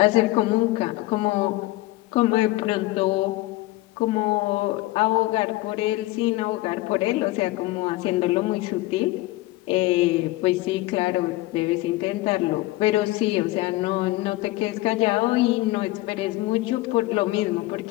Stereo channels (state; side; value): quieter; right; 18.7 dB